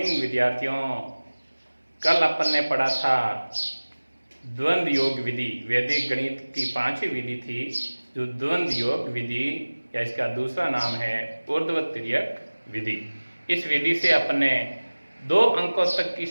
विद्यार्थियों। कल अपन ने पढ़ा था द्वंद्व योग विधि। वैदिक गणित की 5वीं विधि थी जो द्वंद्व योग विधि या इसका दूसरा नाम है ऊर्ध्वतिर्यक विधि। इस विधि से अपन ने 2 अंकों तक की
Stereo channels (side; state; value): both; inverted; correlation -1.00